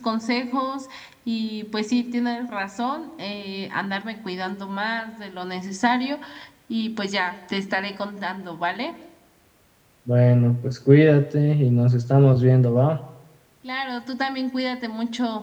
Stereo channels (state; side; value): identical; both; correlation 1.00